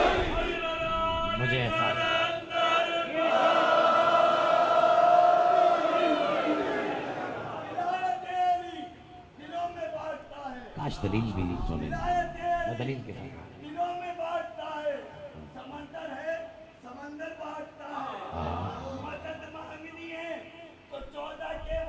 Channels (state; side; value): identical; both; correlation 1.00